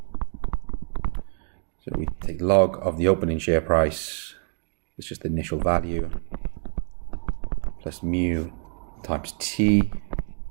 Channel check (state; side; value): silent; left; 61 dB below the other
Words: So we take log of the opening share price, it's just the initial value, plus mu times t,